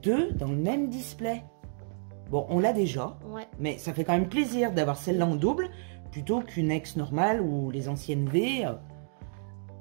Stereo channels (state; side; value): silent; left; digital silence